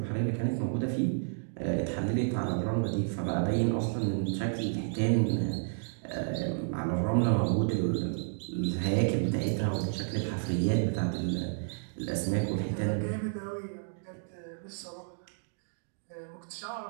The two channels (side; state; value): left; silent; digital silence